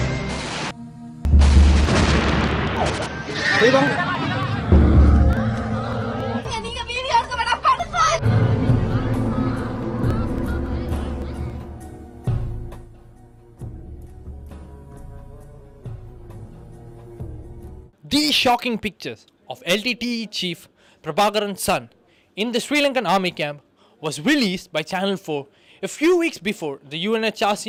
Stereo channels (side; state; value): both; identical; correlation 1.00